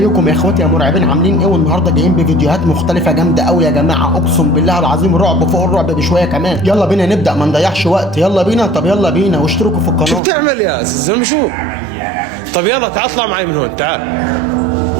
يا اخواتي يا مرعبين، عاملين ايه؟ والنهارده جايين بفيديوهات مختلفه جامده قوي يا جماعه، اقسم بالله العظيم رعب فوق الرعب بشويه كمان. يلا بينا نبدا، ما نضيعش وقت. يلا بينا، طب يلا بينا واشتركوا في القناه. شو بتعمل يا زلمه؟ شو؟ طب يلا تعال اطلع معي من هون، تعال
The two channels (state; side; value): drops out; left; at 10.2 s